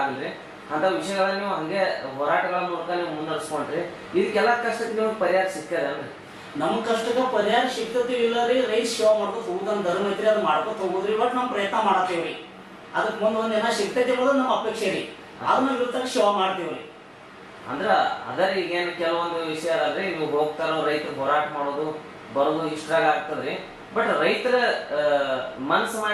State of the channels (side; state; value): both; identical; correlation 1.00